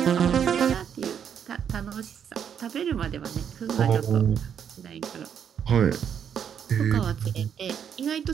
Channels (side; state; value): left; quieter; 8.2 dB